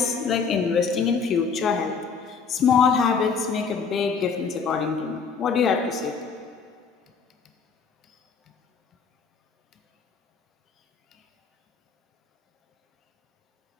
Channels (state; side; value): quieter; right; 5.6 dB